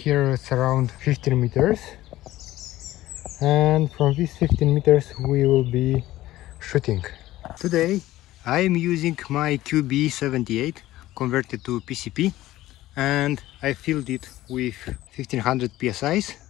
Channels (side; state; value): right; quieter; 15.8 dB